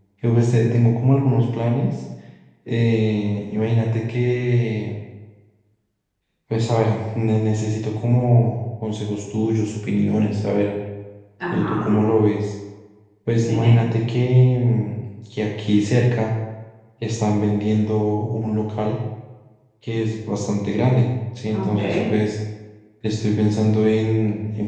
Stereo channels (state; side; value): identical; both; correlation 1.00